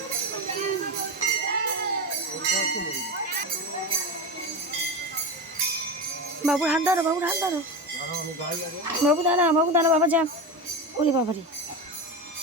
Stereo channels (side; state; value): both; normal; correlation 0.20